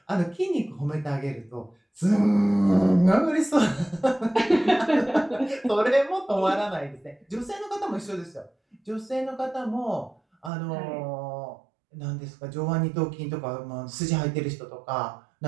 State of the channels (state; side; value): drops out; left; at 10.5 s